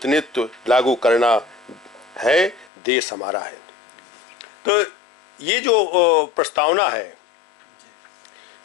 लागू करना है। देश हमारा है। तो ये जो प्रस्तावना है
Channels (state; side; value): drops out; right; at 2.7 s